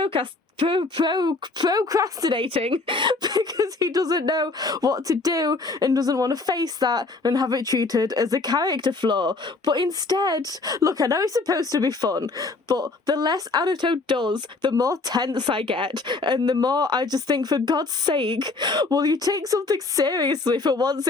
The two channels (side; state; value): right; quieter; 3.6 dB